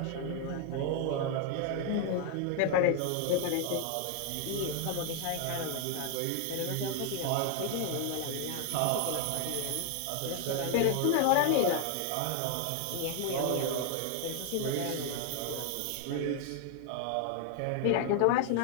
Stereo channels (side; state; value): both; different; correlation 0.01